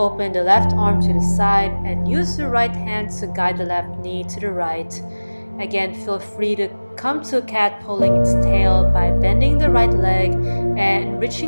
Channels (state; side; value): inverted; both; correlation -1.00